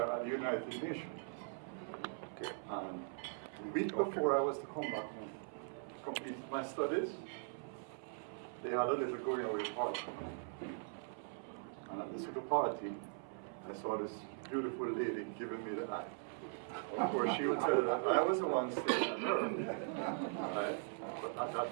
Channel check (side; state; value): left; silent; 51 dB below the other